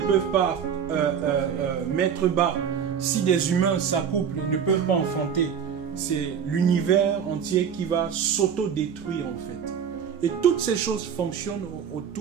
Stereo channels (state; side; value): quieter; left; 7.7 dB